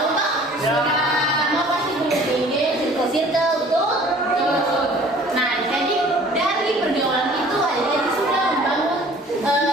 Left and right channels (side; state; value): both; normal; correlation 0.51